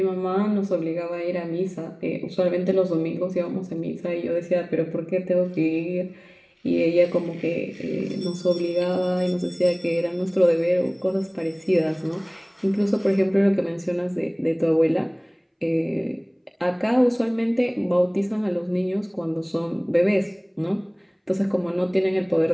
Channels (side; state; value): both; identical; correlation 1.00